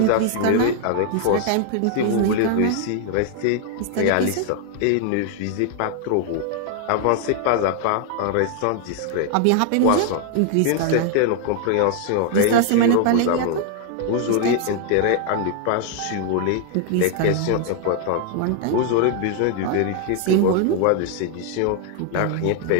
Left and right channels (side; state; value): both; different; correlation 0.00